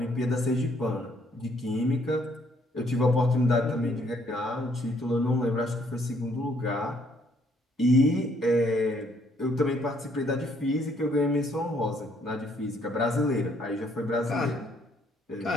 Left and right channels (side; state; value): both; normal; correlation 0.67